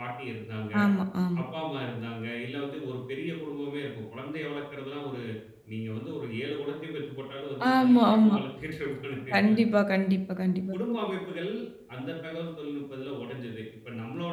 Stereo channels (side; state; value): both; identical; correlation 1.00